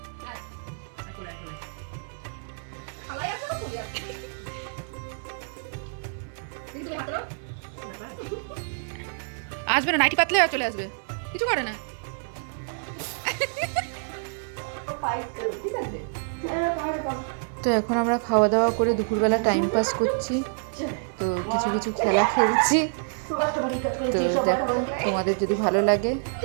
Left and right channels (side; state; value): left; silent; 60 dB below the other